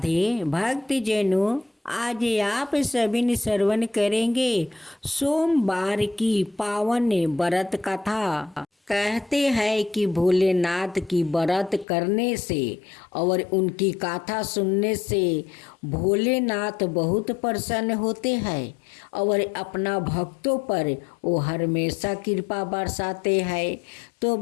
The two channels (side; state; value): right; drops out; at 11.9 s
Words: भक्तजनों, आज आप सभी ने श्रवण करेंगे सोमवार की पावन व्रत कथा। कहते हैं कि भोलेनाथ की व्रत करने से और उनकी कथा सुनने से भोलेनाथ बहुत प्रसन्न होते हैं और अपना भक्तों पर वो हमेशा कृपा बरसाते हैं। तो